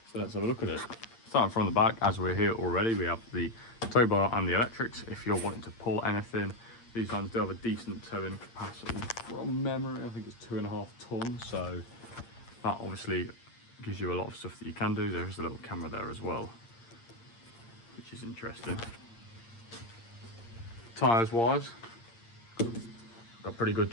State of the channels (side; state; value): right; late; 8.7 ms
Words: So let's have a look at it. Starting from the back, as we're here already, we have the tow bar and the electrics. If you're wanting to pull anything, these vans do have a decent towing capacity. From memory, I think it's 2.5 tons, so that obviously gives you a lot of stuff that you can do. There's a little camera there as well, which is interesting. Tyres wise, got pretty good